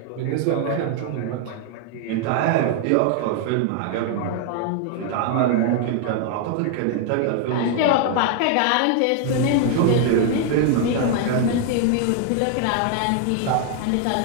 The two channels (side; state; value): both; different; correlation 0.00